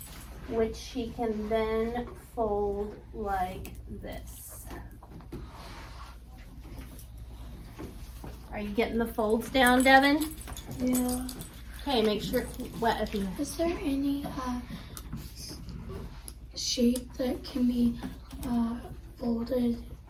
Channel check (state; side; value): identical; both; correlation 1.00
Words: which she can then fold like this. Are you getting the folds down, Devin? Yeah. Okay, make sure it's wet if you. Is there any shape that can be folded